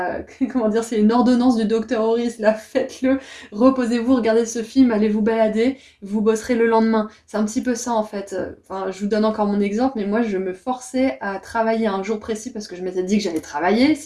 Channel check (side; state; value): both; identical; correlation 1.00